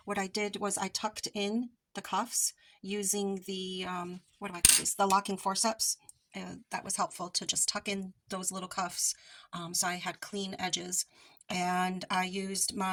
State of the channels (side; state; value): both; identical; correlation 1.00